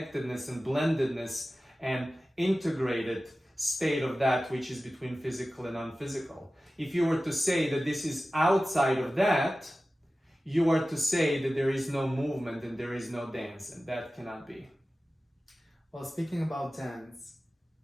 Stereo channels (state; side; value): normal; both; correlation 0.95